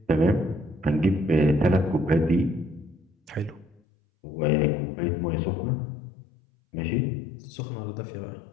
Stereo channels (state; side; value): drops out; right; at 3.8 s